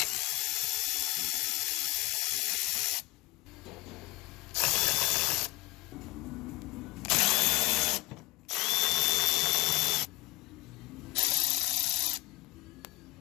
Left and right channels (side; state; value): right; quieter; 21.3 dB